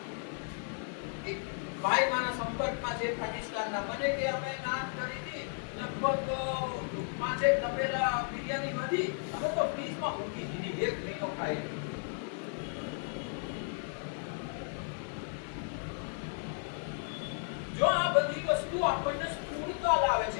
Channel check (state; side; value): silent; right; 55 dB below the other